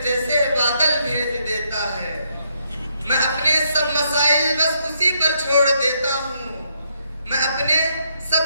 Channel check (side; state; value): both; inverted; correlation -0.76